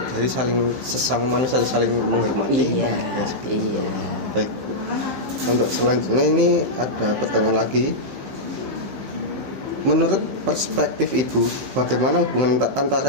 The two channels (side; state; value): left; late; 15 ms